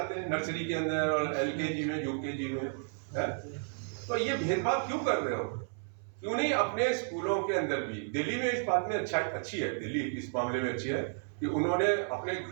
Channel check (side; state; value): left; silent; 56 dB below the other